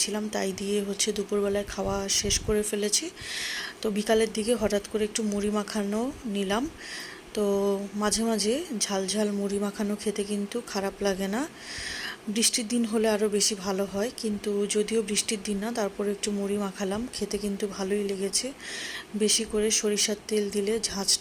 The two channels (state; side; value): identical; both; correlation 1.00